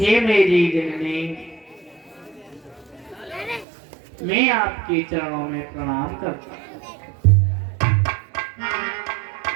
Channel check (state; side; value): drops out; left; at 3.7 s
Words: मेरी जननी, मैं आपके चरणों में प्रणाम करता हूँ।